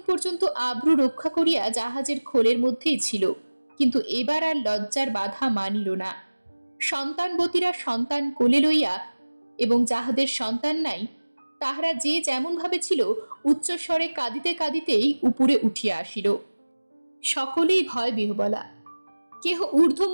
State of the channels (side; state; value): both; inverted; correlation -1.00